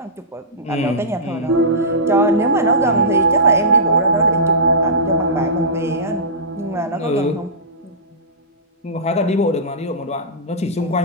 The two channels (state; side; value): normal; both; correlation -0.19